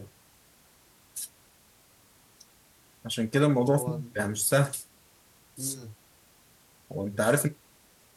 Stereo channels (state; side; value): identical; both; correlation 1.00